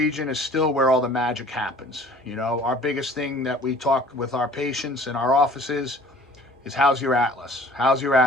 is still where all the magic happens. You know, our biggest thing that we talk with our patients in our offices is how's your atlas? How's your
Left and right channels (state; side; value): normal; both; correlation 0.49